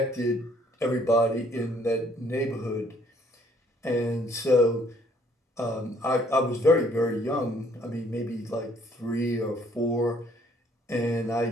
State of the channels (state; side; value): normal; both; correlation 0.63